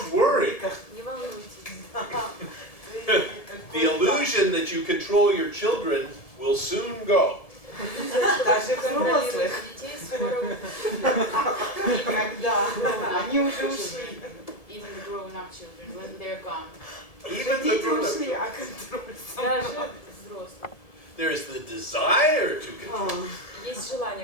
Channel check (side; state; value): right; late; 1.7 ms